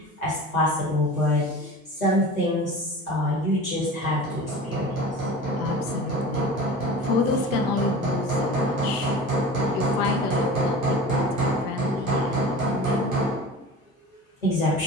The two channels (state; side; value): normal; both; correlation 0.36